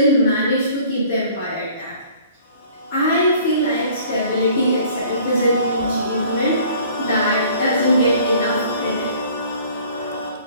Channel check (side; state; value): both; inverted; correlation -0.53